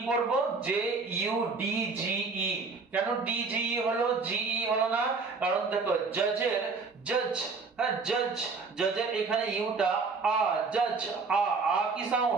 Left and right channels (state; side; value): quieter; left; 4.4 dB